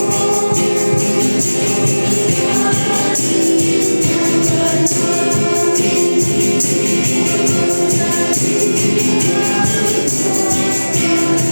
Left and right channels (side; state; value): both; inverted; correlation -1.00